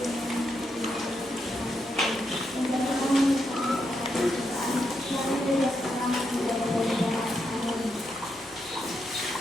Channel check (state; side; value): normal; both; correlation 0.82